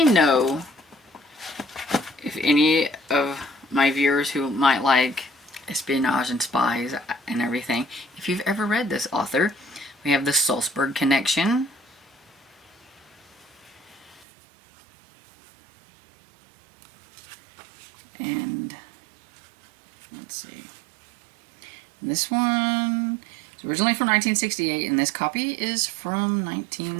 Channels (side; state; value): left; drops out; at 14.2 s